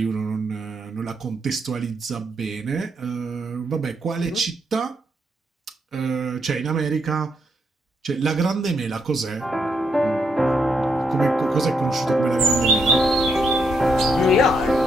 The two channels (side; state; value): both; normal; correlation 0.77